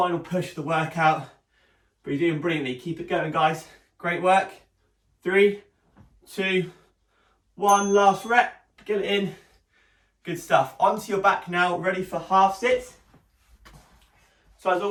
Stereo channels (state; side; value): identical; both; correlation 1.00